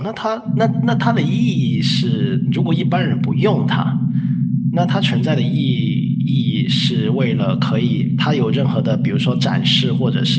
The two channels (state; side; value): identical; both; correlation 1.00